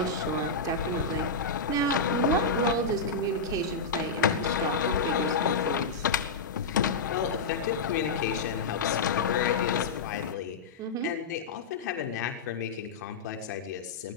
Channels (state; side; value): quieter; right; 4.0 dB